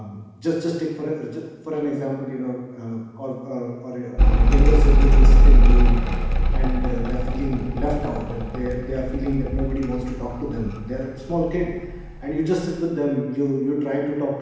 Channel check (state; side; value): identical; both; correlation 1.00